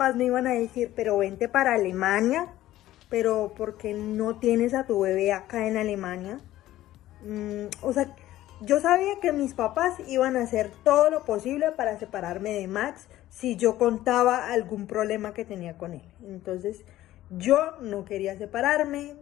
me iban a decir, pero vente para Alemania, pero ¿por qué no tienes a tu bebé acá en Alemania? O sea, yo sabía que mis papás iban a hacer todo lo posible para separarme de Max si yo contaba algún problema que tenía con él. Entonces yo no quería separarme,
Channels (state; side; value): quieter; right; 14.7 dB